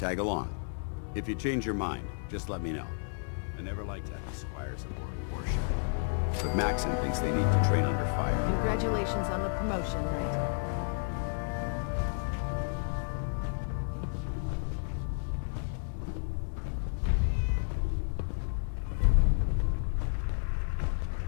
along. If you change your mind, just let me know. I never liked having squires aboard a warship. But Maxon thinks they need to train under fire. Congratulations on the promotion, Knight.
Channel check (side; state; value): right; silent; 57 dB below the other